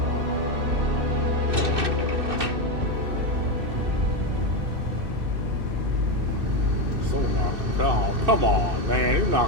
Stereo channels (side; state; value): left; late; 2.6 ms